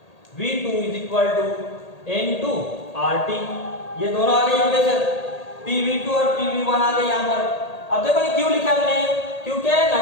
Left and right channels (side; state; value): right; late; 1.8 ms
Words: V2 is equal to N2 RT। ये दोनों आ गए इक्वेशन, PV2 और PV1 आ गए यहाँ पर। अब देखो ये क्यों लिखा हमने, क्योंकि